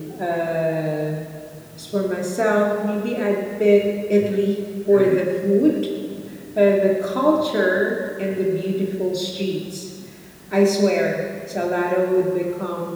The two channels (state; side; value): identical; both; correlation 1.00